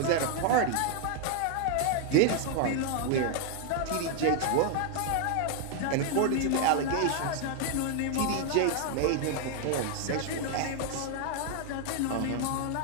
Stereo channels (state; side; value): different; both; correlation 0.00